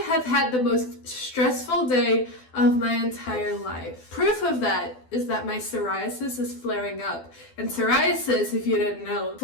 have had the most stressful day of my entire life. Proof of that is that my psoriasis is flaring up. And psoriasis, if you didn't know,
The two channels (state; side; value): late; right; 12 ms